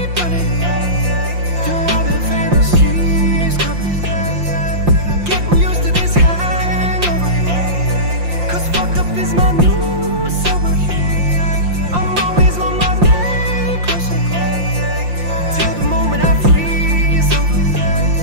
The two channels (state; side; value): late; left; 5.7 ms